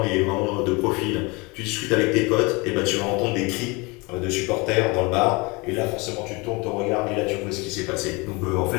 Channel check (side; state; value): right; quieter; 26.9 dB